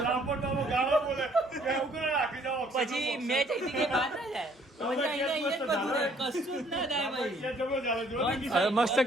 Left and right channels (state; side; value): normal; both; correlation 0.62